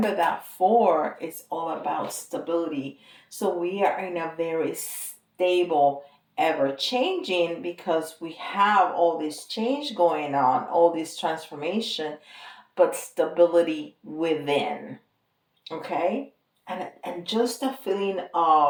that four is all about stability. So we are in a very stable, ever changing, because we have all this change going on, all this transformation, but stability within. Okay? And just a feeling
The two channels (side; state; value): both; identical; correlation 1.00